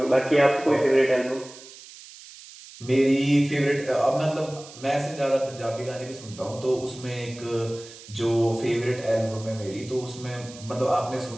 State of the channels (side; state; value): right; noise; hiss, 18 dB below the sound